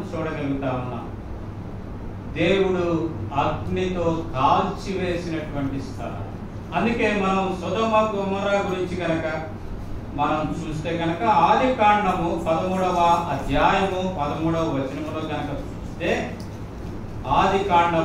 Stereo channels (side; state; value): both; identical; correlation 1.00